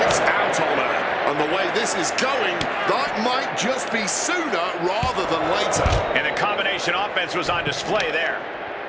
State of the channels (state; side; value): identical; both; correlation 1.00